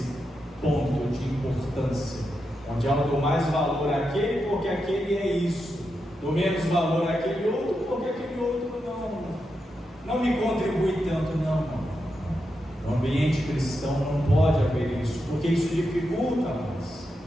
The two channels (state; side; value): normal; both; correlation 0.86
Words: ponto de importância, onde eu dou mais valor àquele porque aquele é isso, dou menos valor àquele outro porque aquele outro não me contribui tanto. Não. No ambiente cristão não pode haver isso, porque isso dificulta mais.